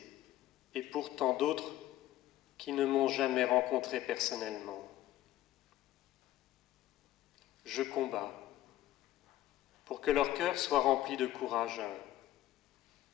et pour tant d'autres qui ne m'ont jamais rencontré personnellement. Je combats pour que leur cœur soit rempli de courage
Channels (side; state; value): right; quieter; 14.2 dB